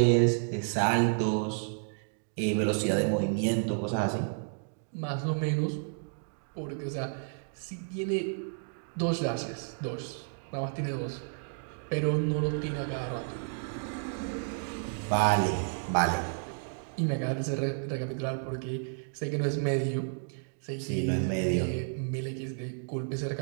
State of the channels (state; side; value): silent; left; digital silence